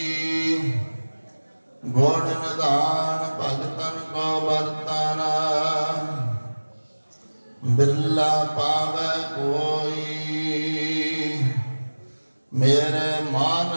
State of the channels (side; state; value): both; inverted; correlation -1.00